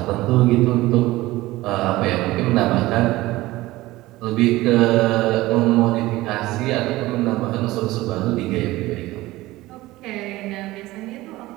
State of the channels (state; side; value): quieter; left; 18.3 dB